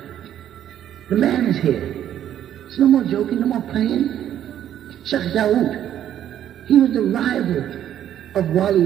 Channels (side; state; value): left; quieter; 10.8 dB